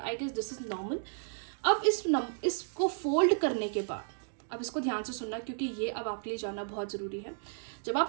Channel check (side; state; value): left; silent; digital silence